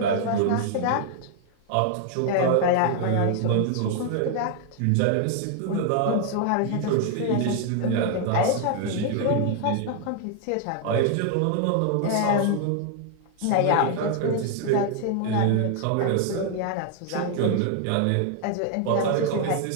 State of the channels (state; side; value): different; both; correlation 0.00